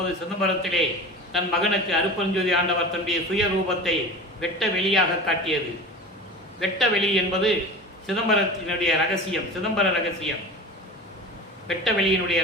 சிதம்பரத்திலே தன் மகனுக்கு அருட்பெருஞ்சோதி ஆண்டவர் தன்னுடைய சுய ரூபத்தை வெட்ட வெளியாக காட்டியது. வெட்ட வெளி என்பது சிதம்பரத்தினுடைய ரகசியம், சிதம்பர ரகசியம், வெட்ட வெளியினுடைய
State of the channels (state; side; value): normal; both; correlation 0.33